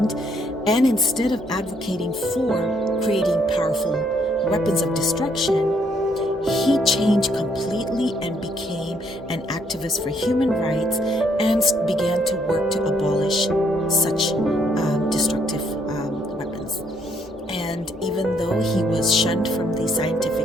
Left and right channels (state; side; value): normal; both; correlation 0.70